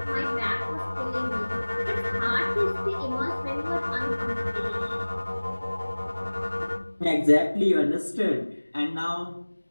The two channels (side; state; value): both; inverted; correlation -1.00